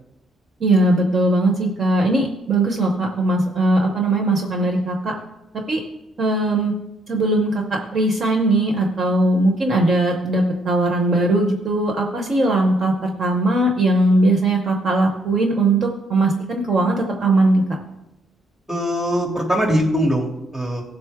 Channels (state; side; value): normal; both; correlation 0.70